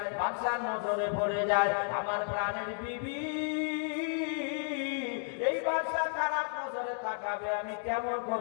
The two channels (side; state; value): right; silent; 56 dB below the other